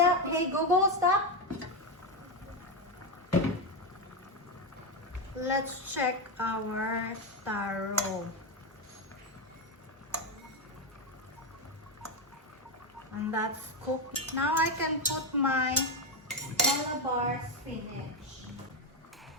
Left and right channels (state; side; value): normal; both; correlation 0.09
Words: Hey Google, stop. Let's check our taro. And that's cooked. Now I can put my Malabar spinach.